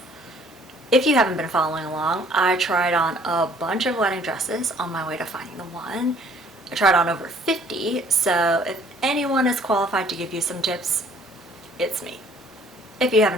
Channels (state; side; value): normal; both; correlation 0.57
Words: If you haven't been following along, I tried on a bunch of wedding dresses on my way to finding the one. I tried on over 50, so if anyone is qualified to give you some tips, it's me. If you